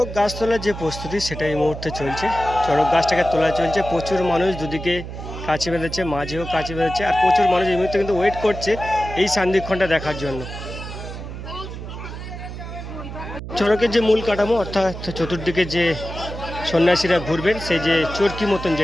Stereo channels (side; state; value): right; noise; hum, 9 dB below the sound